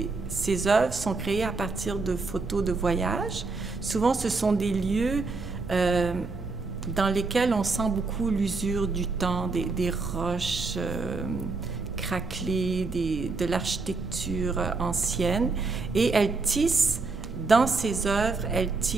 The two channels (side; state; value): left; quieter; 3.9 dB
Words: œuvres sont créées à partir de photos de voyage. Souvent, ce sont des lieux dans lesquels on sent beaucoup l'usure du temps, des roches craquelées, de l'architecture ancienne. Et elle tisse, dans ses œuvres, elle